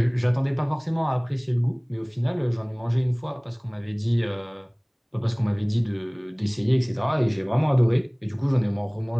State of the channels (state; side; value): identical; both; correlation 1.00